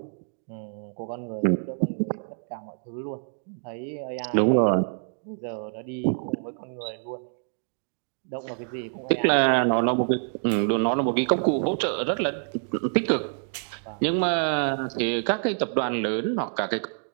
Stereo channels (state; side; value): silent; left; digital silence